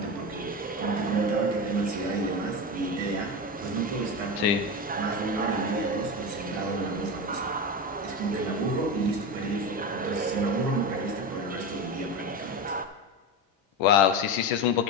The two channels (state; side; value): normal; both; correlation 0.21